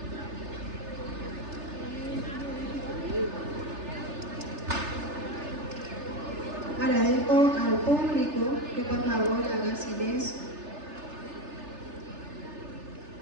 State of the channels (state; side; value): late; left; 3.3 ms